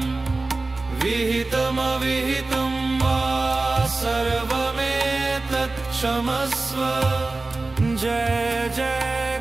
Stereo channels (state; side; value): quieter; left; 3.4 dB